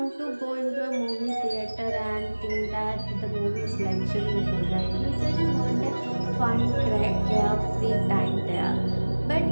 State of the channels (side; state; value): both; inverted; correlation -1.00